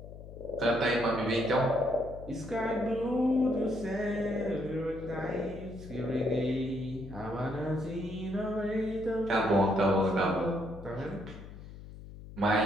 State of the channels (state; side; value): noise; left; hum, 14 dB below the sound